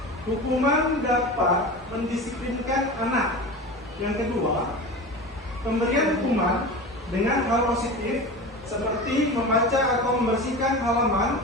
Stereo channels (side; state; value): both; normal; correlation 0.30